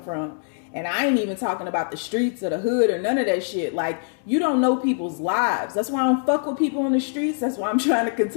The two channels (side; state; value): right; silent; digital silence